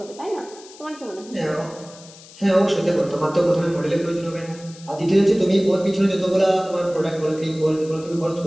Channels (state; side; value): noise; left; hiss, 20 dB below the sound